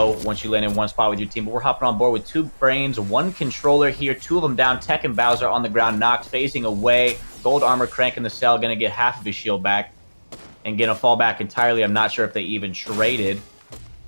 once you land in one spot with your team. But we're hopping on board with 2 brains, 1 controller here, 2 of them down. Tech and Bowser on the ground, knocked, phasing away. Gold armor cranking the cell, gonna get half of his shield back and gonna fall back entirely. I'm not sure if they even traded.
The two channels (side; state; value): both; inverted; correlation -1.00